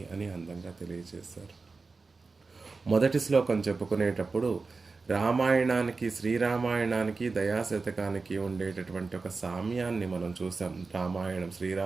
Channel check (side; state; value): left; quieter; 4.1 dB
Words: అని అందంగా తెలియజేశారు. మొదటి శ్లోకం చెప్పుకునేటప్పుడు రామాయణానికి, శ్రీరామాయణానికి, దయాశతకానికి ఉండేటటువంటి ఒక సామ్యాన్ని మనం చూసాం. రామాయణం,